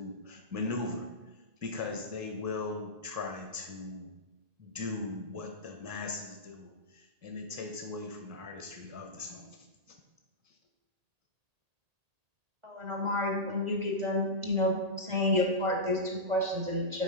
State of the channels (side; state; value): left; late; 1.8 ms